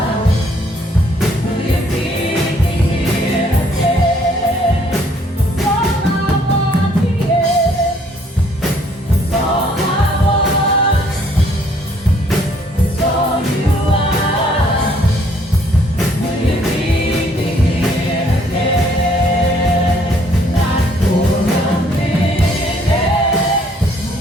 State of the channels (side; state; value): both; normal; correlation 0.64